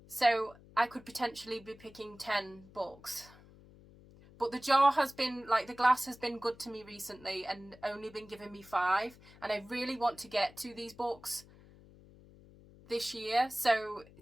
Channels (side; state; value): left; noise; hum, 23 dB below the sound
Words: So I could potentially be picking 10 books. But the jar has been, the glass has been good to me recently and only been giving me 5. And I really want to get to these books this year. So